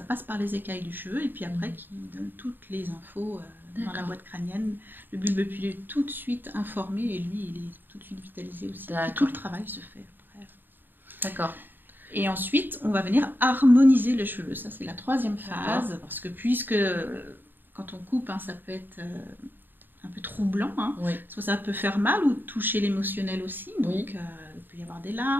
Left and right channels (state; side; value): late; left; 0.093 ms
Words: passe par les écailles du cheveu et puis après qui donne toutes les infos dans la boîte crânienne. Le bulbe pileux est tout de suite informé et lui, il est tout de suite vitalisé aussi. Et tout le travail se fait après. D'accord. Et ensuite, on va venir harmoniser le cheveu. Ça, c'est la 3e phase. Parce que puisque quand on coupe, ça peut être un peu troublant. Soit ça peut faire mal ou toucher l'émotionnel aussi. Donc, il peut y avoir des